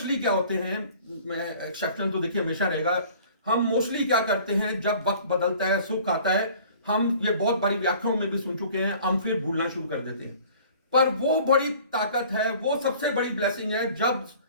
क्या होते हैं, मैं एक्सेप्शन तो देखिए हमेशा रहेगा, हम मोस्टली क्या करते हैं जब वक्त बदलता है, सुख आता है, हम ये बहुत बड़ी व्याख्याओं में भी सुन चुके हैं, हम फिर भूलना शुरू कर देते हैं। पर वो बड़ी ताकत है, वो सबसे बड़ी ब्लेसिंग है जब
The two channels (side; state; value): both; inverted; correlation -0.49